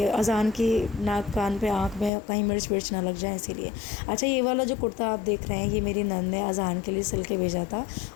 अजहान की नाक, कान पे, आँख में कहीं मिर्च विर्च ना लग जाए, इसीलिए। अच्छा, ये वाला जो कुर्ता आप देख रहे हैं, ये मेरी नंद ने अजहान के लिए सिल के भेजा था।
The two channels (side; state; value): right; drops out; at 2.1 s